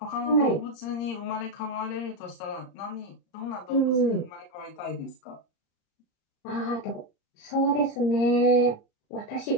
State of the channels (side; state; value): right; late; 35 ms